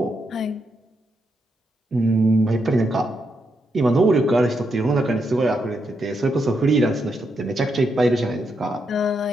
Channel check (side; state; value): both; normal; correlation 0.81